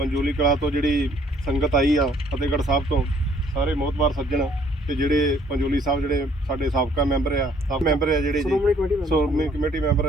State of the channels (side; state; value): both; normal; correlation 0.62